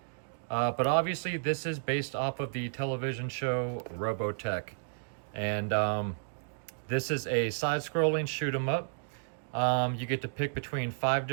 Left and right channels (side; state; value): left; silent; digital silence